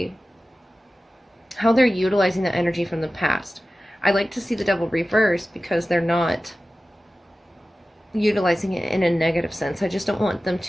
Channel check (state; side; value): normal; both; correlation 0.95